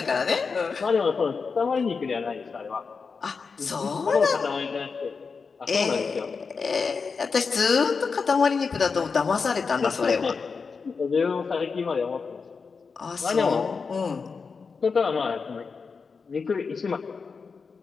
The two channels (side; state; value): right; quieter; 5.1 dB